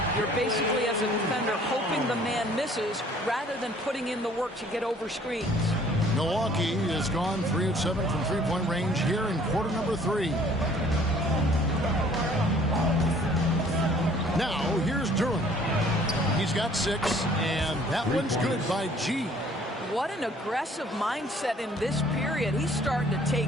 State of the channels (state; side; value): normal; both; correlation 0.56